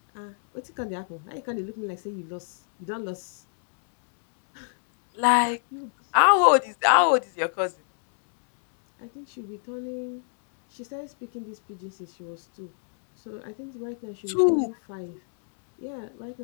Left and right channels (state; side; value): silent; right; digital silence